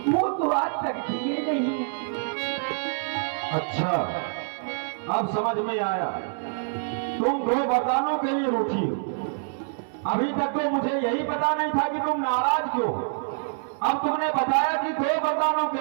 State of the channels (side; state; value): left; silent; 61 dB below the other